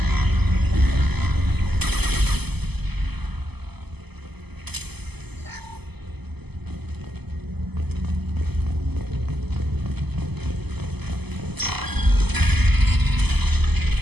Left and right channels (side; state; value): left; late; 0.98 ms